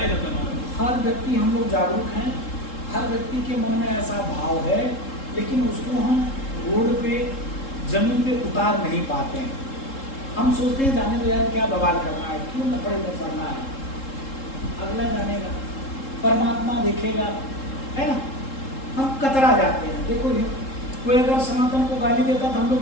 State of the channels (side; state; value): right; late; 3.7 ms